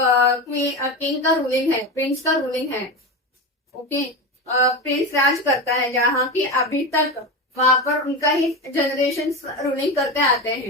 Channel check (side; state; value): both; normal; correlation 0.21